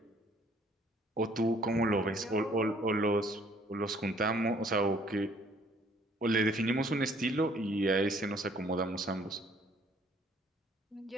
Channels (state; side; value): normal; both; correlation 0.61